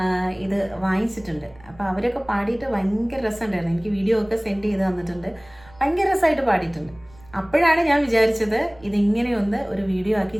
ഇത് വാങ്ങിച്ചിട്ടുണ്ട്. അപ്പോൾ അവരൊക്കെ പാടിയിട്ട് ഭയങ്കര രസമുണ്ടായിരുന്നു. എനിക്ക് വീഡിയോ ഒക്കെ സെൻഡ് ചെയ്ത് തന്നിട്ടുണ്ട്. ഭയങ്കര രസമായിട്ട് പാടിയിട്ടുണ്ട്. അപ്പോഴാണ് ഞാൻ വിചാരിച്ചത് ഇതിങ്ങനെയൊന്ന് ഒരു വീഡിയോ ആക്കി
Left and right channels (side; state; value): right; noise; rumble, 25 dB below the sound